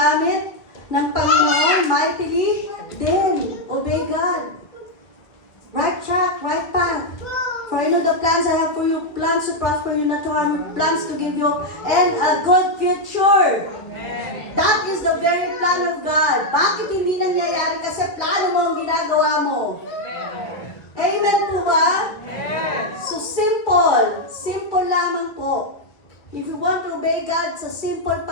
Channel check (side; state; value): right; late; 1.6 ms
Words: ng Panginoon mightily, then obey God. Right track, right path. For you know the plans I have for you, plans to prosper you, not to harm you, plans to give you and a good future. That is the very plan of God. Bakit hindi nangyayari? Kasi plano mo ang ginagawa mo. Amen po ba? So simple. Simple lamang po. If you want to obey God, sa simple